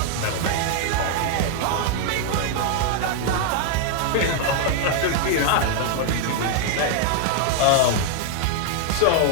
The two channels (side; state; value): both; different; correlation 0.00